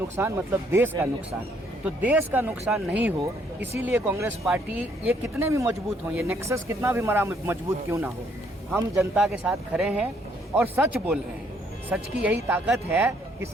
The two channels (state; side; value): normal; both; correlation 0.68